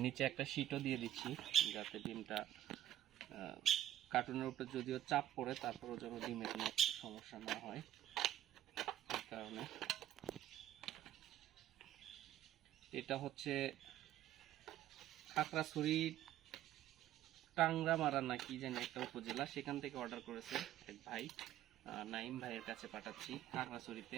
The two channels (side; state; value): left; quieter; 12.4 dB